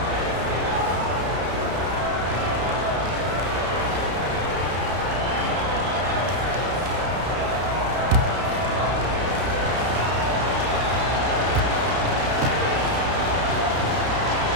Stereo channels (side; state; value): left; late; 32 ms